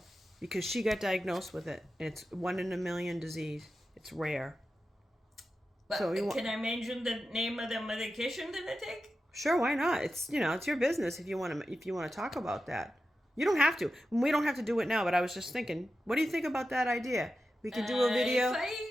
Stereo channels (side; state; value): both; normal; correlation 0.91